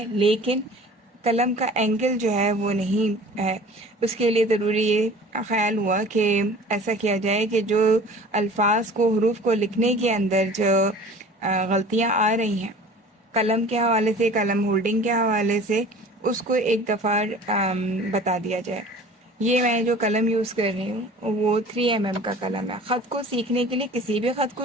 لیکن قلم کا اینگل جو ہے وہ نہیں ہے۔ اس کے لیے ضروری یہ خیال ہوا کہ ایسا کیا جائے کہ جو الفاظ کو، حروف کو لکھنے کے اندر جو غلطیاں آ رہی ہیں قلم کے حوالے سے، قلم ہولڈنگ کے حوالے سے، اس کو ایک دفعہ بتا دیا جائے۔ یہ میں جو قلم یوز کر رہی ہوں وہ 3mm کا قلم ہے۔ خط کو سیکھنے کے لیے، کسی بھی خط کو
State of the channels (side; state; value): both; normal; correlation 0.44